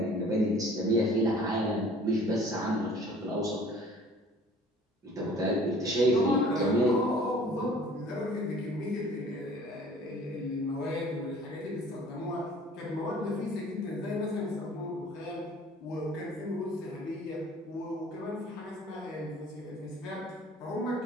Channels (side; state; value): both; normal; correlation 0.50